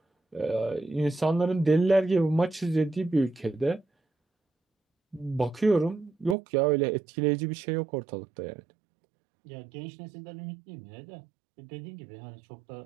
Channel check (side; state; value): left; drops out; at 6.4 s